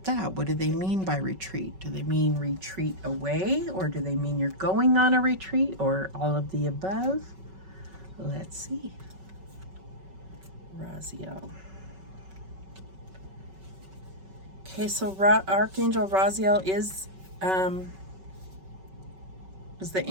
that. What do they mean by retreat? Do they mean retreat away, or do they mean you're going on a retreat, or all of the above? Let's see. Raziel. Okay, so Archangel Raziel is the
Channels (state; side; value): late; left; 5.3 ms